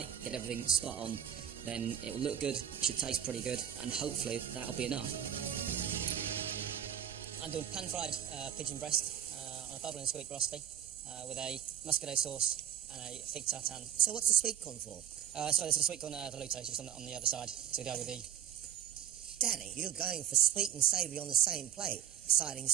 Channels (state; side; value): quieter; left; 10.0 dB